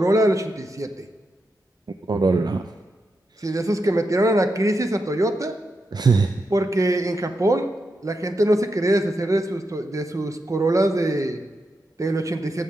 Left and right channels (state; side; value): normal; both; correlation 0.86